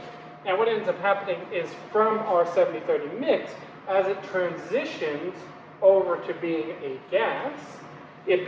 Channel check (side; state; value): both; identical; correlation 1.00